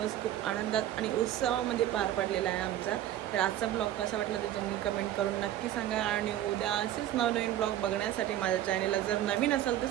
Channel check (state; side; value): quieter; left; 12.5 dB